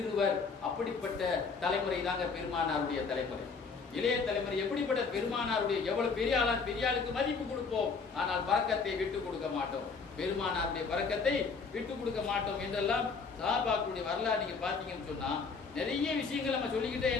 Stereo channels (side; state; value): right; quieter; 5.0 dB